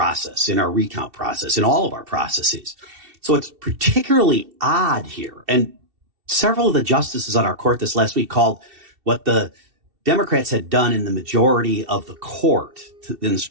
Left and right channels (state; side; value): late; left; 2.7 ms